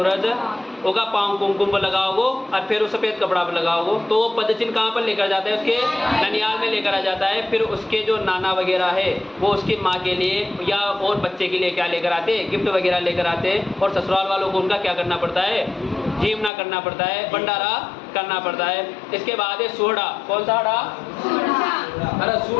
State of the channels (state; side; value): drops out; right; at 16.5 s